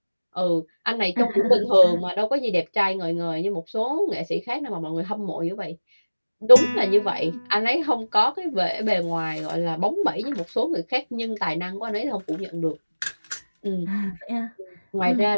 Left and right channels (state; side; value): inverted; both; correlation -1.00